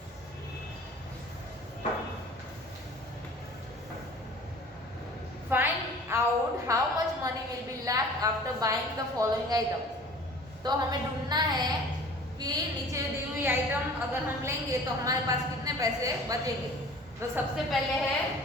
Find out how much money will be left after buying the following items. तो हमें ढूंढना है कि नीचे दी हुई आइटम अगर हम लेंगे तो हमारे पास कितने पैसे बचेंगे. तो सबसे पहले है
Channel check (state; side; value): normal; both; correlation 0.46